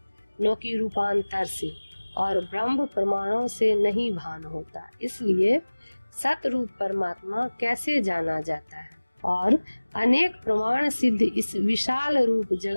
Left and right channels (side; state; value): both; inverted; correlation -1.00